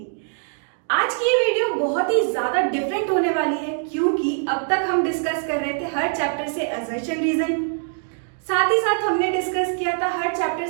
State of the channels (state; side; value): silent; left; digital silence